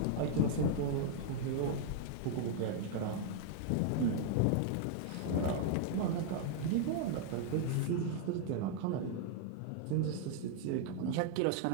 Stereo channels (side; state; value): both; different; correlation 0.00